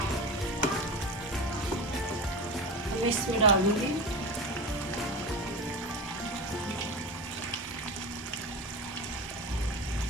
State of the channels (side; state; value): both; normal; correlation 0.26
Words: मैं इसमें डालूंगी